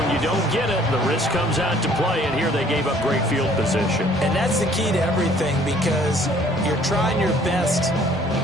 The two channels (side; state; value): both; normal; correlation 0.57